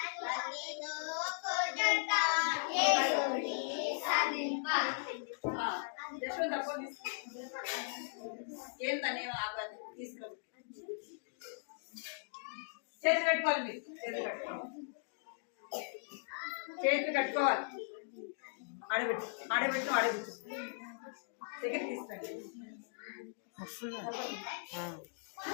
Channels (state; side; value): silent; right; digital silence